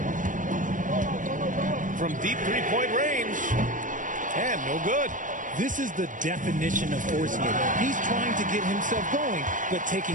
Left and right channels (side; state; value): left; late; 0.38 ms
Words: From deep three-point range. And no good. This is the definition of forcing it. He's trying to get himself going, but